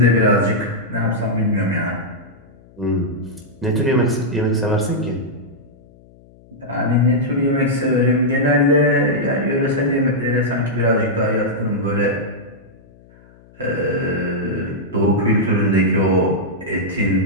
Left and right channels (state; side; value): noise; left; hum, 26 dB below the sound